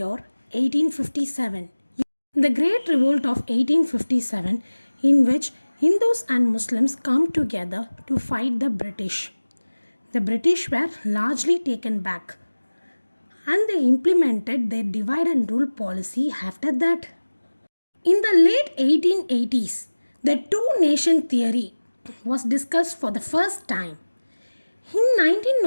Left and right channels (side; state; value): both; inverted; correlation -1.00